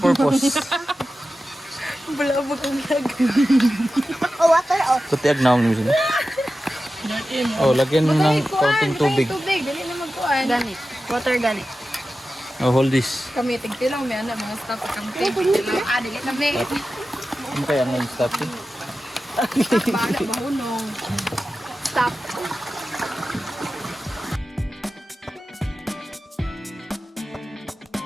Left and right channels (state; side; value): normal; both; correlation 0.94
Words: Bulabog ang lag. Oh, water. Oh. Kutiag na ako nila. Oh, lagyan mo ng konting tubig. Tubig, dali na magkuhan. Ganit. Water ganit. Oh, hold this. Kami, tigtilang may anak, mga staff at kami tigtilang. Dali kami. Ano kaya ang name stop eh? Bahala, mahunong. Stop.